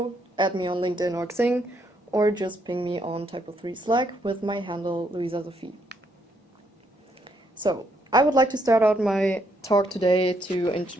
add me on LinkedIn or Xing, or just ping me on TYPO3 Slack with my handle luisasophie. So, I would like to start out my talk today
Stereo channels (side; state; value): both; normal; correlation 0.74